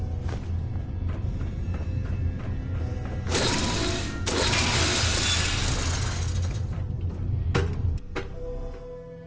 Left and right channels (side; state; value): both; identical; correlation 1.00